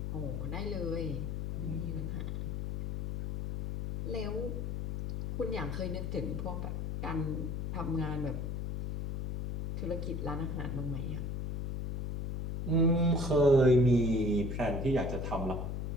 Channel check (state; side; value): noise; left; hum, 3 dB below the sound